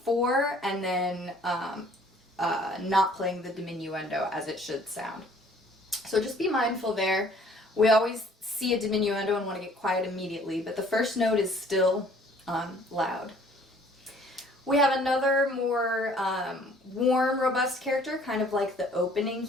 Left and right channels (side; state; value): both; normal; correlation 0.56